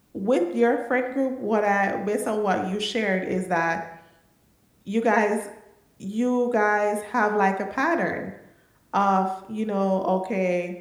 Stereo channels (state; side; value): identical; both; correlation 1.00